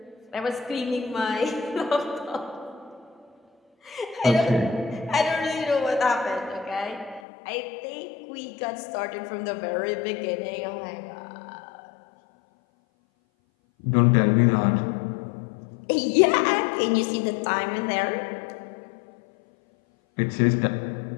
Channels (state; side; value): drops out; right; at 7.2 s